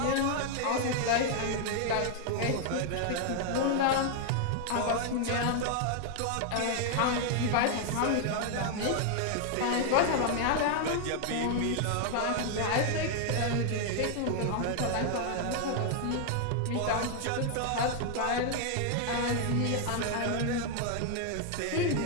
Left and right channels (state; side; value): different; both; correlation 0.00